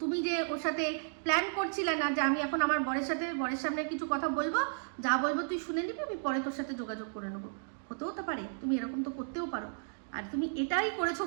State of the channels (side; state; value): left; silent; digital silence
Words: তুমি যে ওর সাথে প্ল্যান করছিলে না যে আমি এখন আমার বরের সামনে কিছু কথা বলবো, যা বলবো তুই শুনে নিবি, আমি পরে তোর সাথে যোগাযোগ করে নেবো। হতেও তো পারে, তুমি এরকম তো করতেও পারো। আর তুমি এটাই করেছো